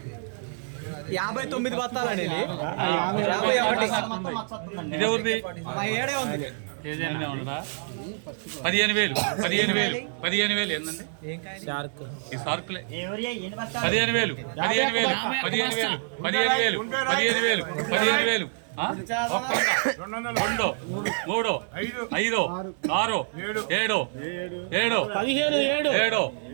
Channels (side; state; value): left; silent; digital silence